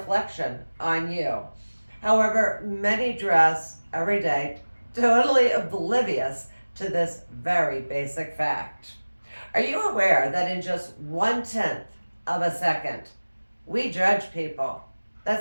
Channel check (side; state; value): both; inverted; correlation -1.00